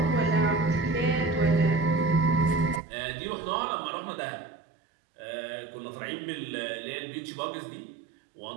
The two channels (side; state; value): left; drops out; at 2.8 s